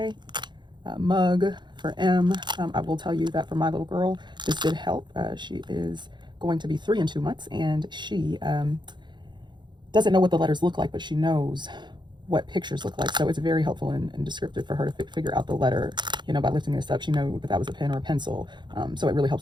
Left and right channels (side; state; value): left; late; 0.22 ms